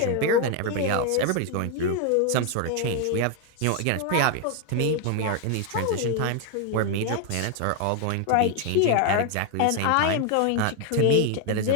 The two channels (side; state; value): both; different; correlation 0.01